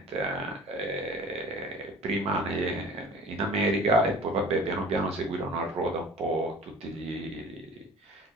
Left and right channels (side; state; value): both; normal; correlation 0.45